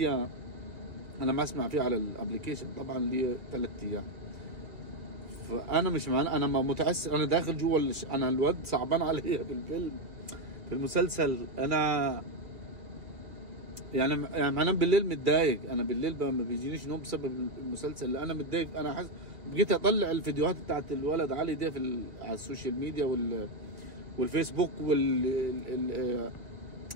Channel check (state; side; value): late; left; 2.1 ms